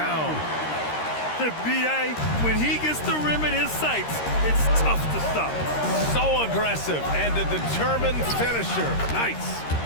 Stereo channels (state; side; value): late; right; 13 ms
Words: The B.A., when he gets the rim in his sights, it's tough to stop. So aggressive and a determined finisher. Nice.